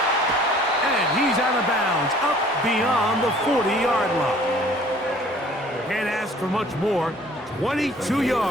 And he's out of bounds, up beyond the 40-yard line. Can't ask for much more. 22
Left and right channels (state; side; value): normal; both; correlation 0.53